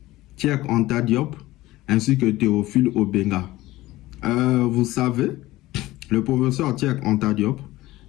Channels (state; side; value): quieter; right; 17.6 dB